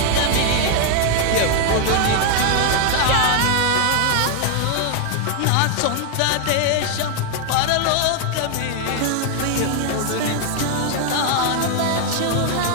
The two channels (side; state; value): both; different; correlation 0.00